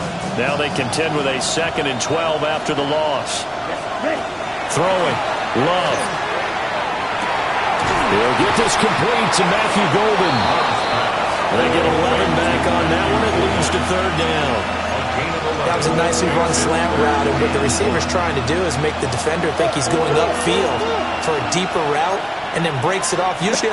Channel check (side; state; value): both; identical; correlation 1.00